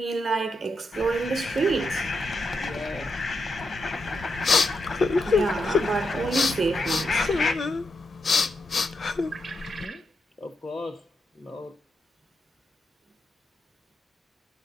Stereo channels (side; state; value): both; normal; correlation 0.83